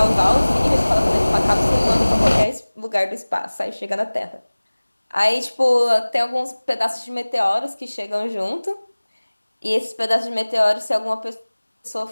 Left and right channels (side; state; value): both; inverted; correlation -1.00